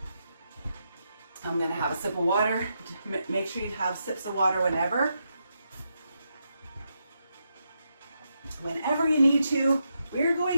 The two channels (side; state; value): both; inverted; correlation -0.83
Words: I'm gonna have a sip of water. Make sure you have sips of water whenever you need to. We're